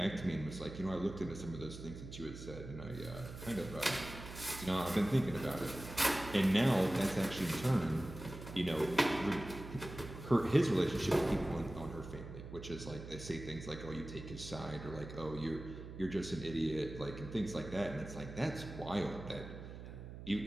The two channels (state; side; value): noise; right; hum, 11 dB below the sound